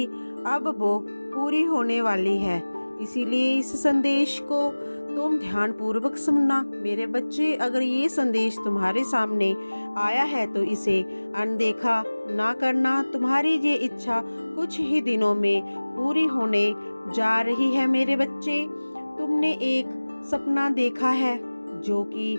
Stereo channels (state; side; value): inverted; both; correlation -1.00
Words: अब वो पूरी होने वाली है। इसीलिए इस संदेश को तुम ध्यानपूर्वक सुनना। मेरे बच्चे, अगर ये संदेश तुम्हारे सामने आया है तो इसे अनदेखा ना करना। तुम्हारी ये इच्छा कुछ ही दिनों में पूरी होने जा रही है। मेरे बच्चे, तुमने एक सपना देखा है जो कि